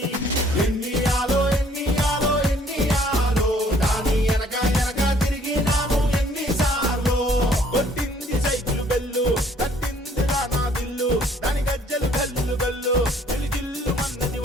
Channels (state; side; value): normal; both; correlation 0.60